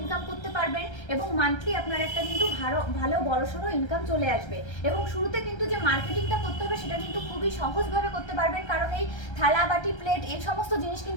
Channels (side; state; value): right; late; 1.3 ms